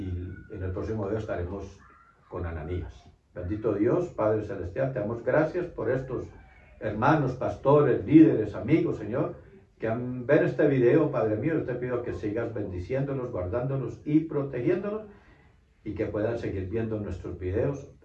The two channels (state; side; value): identical; both; correlation 1.00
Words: el próximo video estaremos con Ananías. Bendito Dios, Padre Celestial, te damos gracias por estos hermanos, pastores, líderes, amigos, Señor, que ven este video, Padre mío. Yo te pido que sigas bendiciéndolos, guardándolos y protegiéndolos y que puedan seguir viendo nuestros videos